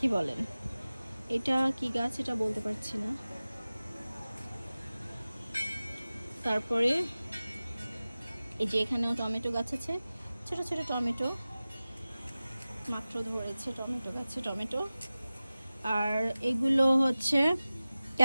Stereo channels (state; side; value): inverted; both; correlation -0.97